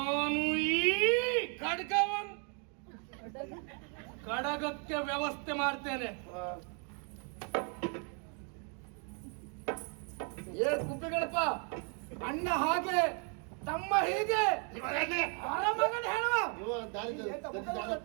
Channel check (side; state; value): left; quieter; 39.4 dB